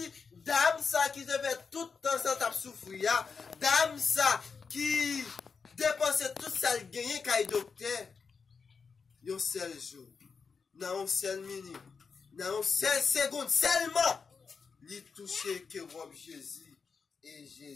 dame ça qui devait tout le temps sans souffrir, dame ça qui dépensait tout ça le gagné quand il docteur, un seul jour, dans une seule minute, dans une seule seconde, seulement, il touchait que robe Jésus, et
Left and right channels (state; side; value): quieter; right; 5.4 dB